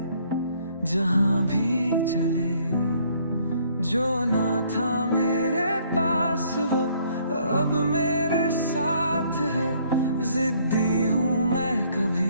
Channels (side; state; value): both; inverted; correlation -0.63